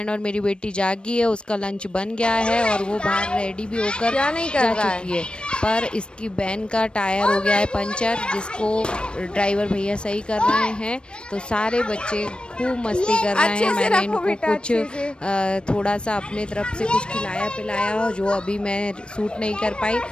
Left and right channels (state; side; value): late; right; 0.055 ms